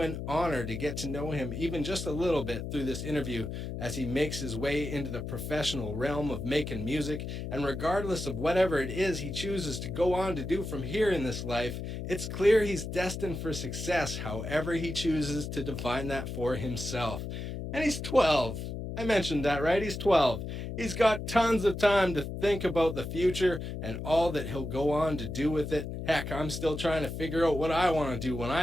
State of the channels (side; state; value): left; noise; hum, 6 dB below the sound